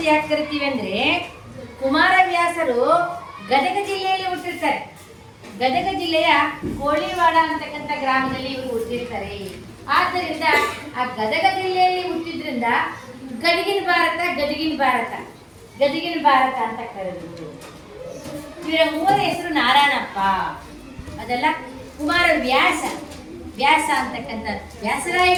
ಯಾಕೆ ಕರಿತೀವಿ ಅಂದ್ರೆ, ಕುಮಾರವ್ಯಾಸರು ಗದಗ ಜಿಲ್ಲೆಯಲ್ಲಿ ಹುಟ್ಟಿರ್ತಾರೆ. ಗದಗ ಜಿಲ್ಲೆಯ ಕೋಳಿವಾಡ ಅಂತಕ್ಕಂಥ ಗ್ರಾಮದಲ್ಲಿ ಇವರು ಹುಟ್ಟಿರ್ತಾರೆ. ಆದ್ದರಿಂದ ಆ ಗದಗ ಜಿಲ್ಲೆಯಲ್ಲಿ ಹುಟ್ಟಿದ್ರಿಂದ ಗದಗಿನ ಭಾರತ ಗದಗಿನ ಭಾರತ ಅಂತ ಕರೆದ್ರು. ಇವರ ಮೂವರ ಹೆಸರು ನಾರಾಯಣಪ್ಪ, ಅದೆಲ್ಲ ಕುಮಾರವ್ಯಾಸ ಅಂತಕ್ಕಂಥ ವ್ಯಾಸರಾಯ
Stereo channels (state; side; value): identical; both; correlation 1.00